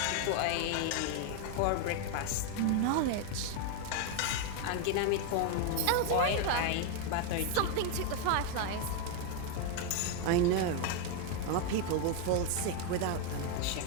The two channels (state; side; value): different; both; correlation 0.01